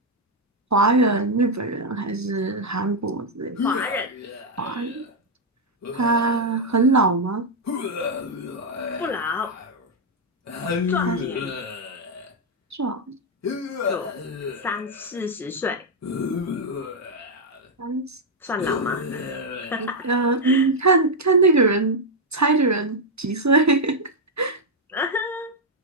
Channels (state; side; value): normal; both; correlation 0.01